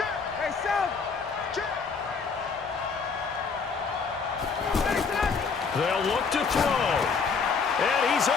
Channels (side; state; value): right; quieter; 5.2 dB